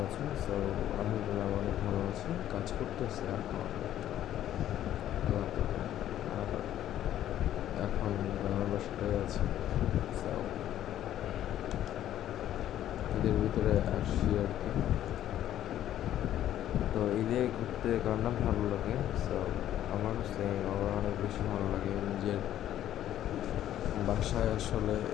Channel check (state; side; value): quieter; right; 11.9 dB